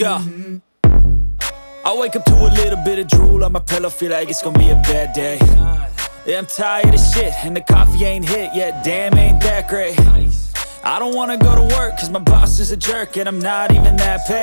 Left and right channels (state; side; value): inverted; both; correlation -1.00